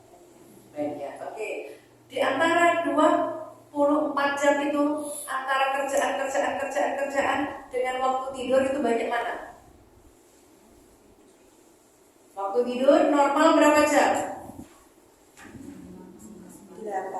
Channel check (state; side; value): identical; both; correlation 1.00